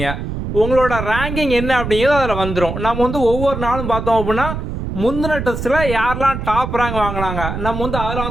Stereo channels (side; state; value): right; noise; rumble, 5 dB below the sound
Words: உங்களோட ரேங்கிங் என்ன அப்படிங்கிறது அதில் வந்துடும். நம்ம ஒவ்வொரு நாளும் பார்த்தோம் அப்படின்னா முந்தின டெஸ்ட்டில் யாரெல்லாம் டாப் ரேங்க் வாங்கினாங்க நம்ம